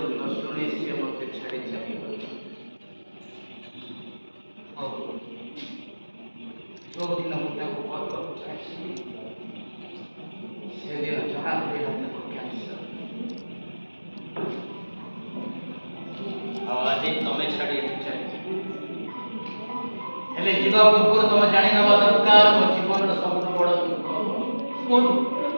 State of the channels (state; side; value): inverted; both; correlation -1.00